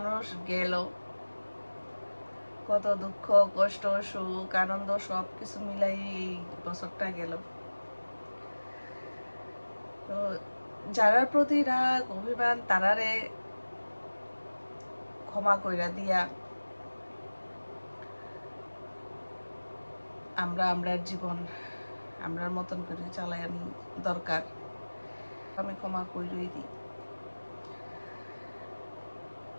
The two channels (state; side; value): inverted; both; correlation -1.00